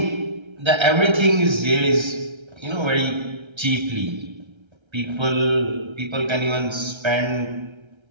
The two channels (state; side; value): late; left; 1.3 ms